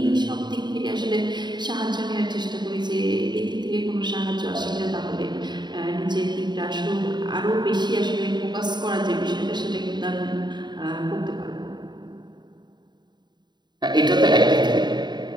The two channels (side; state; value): left; late; 0.21 ms